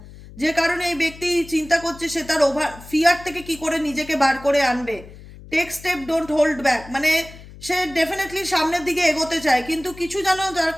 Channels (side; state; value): left; noise; hum, 18 dB below the sound